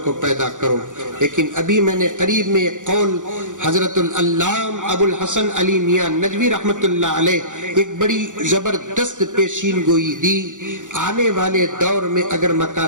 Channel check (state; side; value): late; left; 0.86 ms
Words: کو پیدا کرو، لیکن ابھی میں نے قریب میں ایک قول حضرت العلامہ ابو الحسن علی میاں ندوی رحمت اللہ علیہ ایک بڑی زبردست پیشین گوئی دی۔ آنے والے دور میں اگر